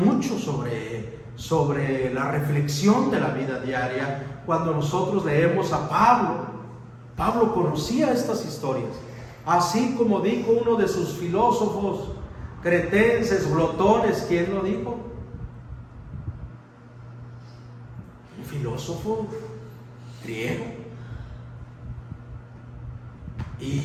sobre la reflexión de la vida diaria. Cuando nosotros leemos a Pablo conocía estas historias, así como dijo uno de sus filósofos cretenses, glotones. ¿Quién lo dijo? Un filósofo griego.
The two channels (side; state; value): both; identical; correlation 1.00